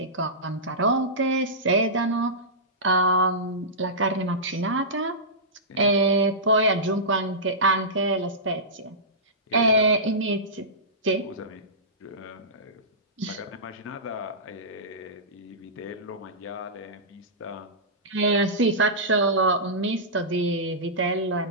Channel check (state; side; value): normal; both; correlation -0.17